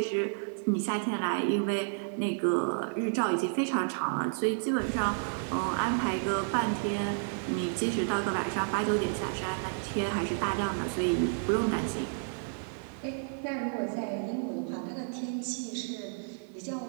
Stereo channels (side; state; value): left; silent; digital silence